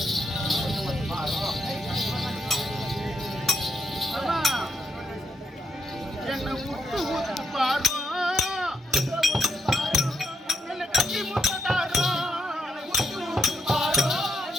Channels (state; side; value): normal; both; correlation 0.78